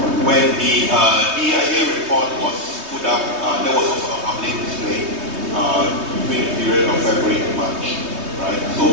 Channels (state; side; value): late; left; 3.2 ms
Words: when the DIA report was put up, there was also a public display between the period of February and March, right? So